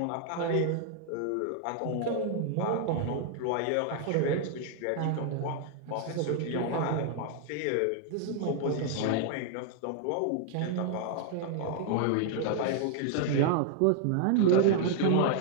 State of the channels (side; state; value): both; different; correlation 0.00